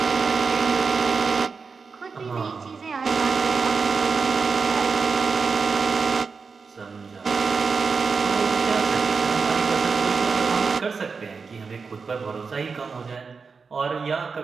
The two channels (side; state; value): left; quieter; 5.0 dB